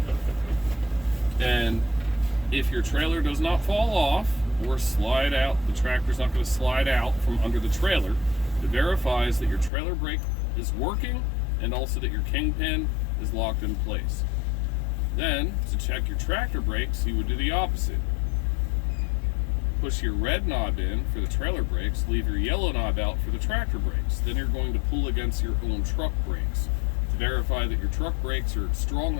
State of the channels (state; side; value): drops out; right; at 9.7 s